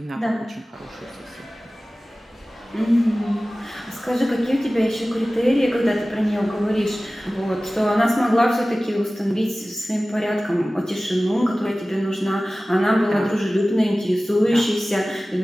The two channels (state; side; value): normal; both; correlation 0.97